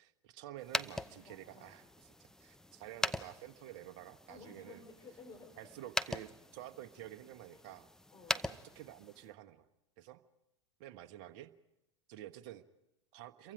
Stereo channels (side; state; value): both; normal; correlation 0.66